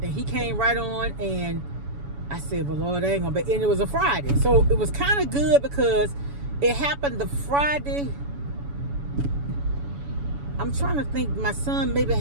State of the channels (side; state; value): left; late; 7.1 ms